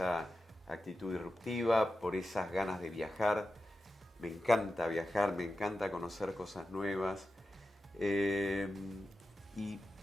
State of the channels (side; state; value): both; normal; correlation 0.91